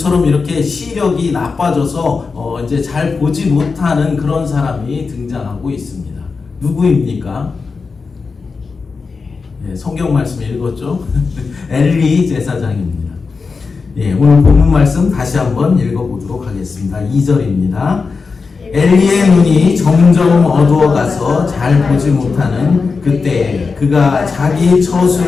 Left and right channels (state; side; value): quieter; right; 4.7 dB